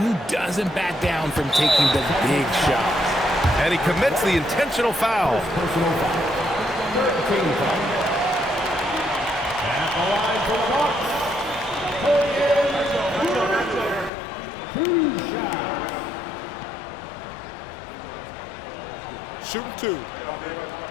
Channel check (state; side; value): drops out; right; at 14.1 s